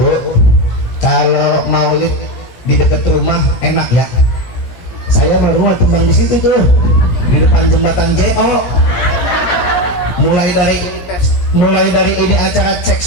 kalau maulid di dekat rumah enak ya. Saya rumah tumbang di situ tuh, di depan jembatan JO. Mulai dari ini acara cek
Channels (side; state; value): right; late; 17 ms